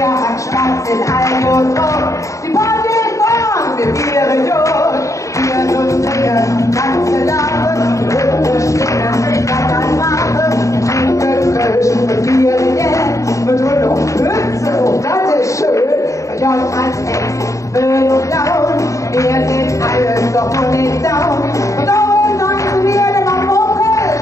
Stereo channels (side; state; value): right; late; 0.15 ms